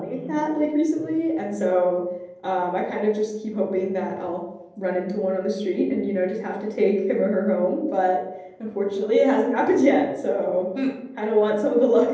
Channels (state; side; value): identical; both; correlation 1.00